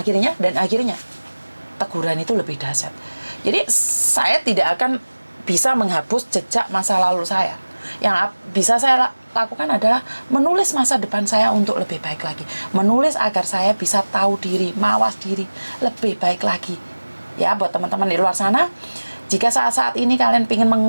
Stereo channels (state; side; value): inverted; both; correlation -1.00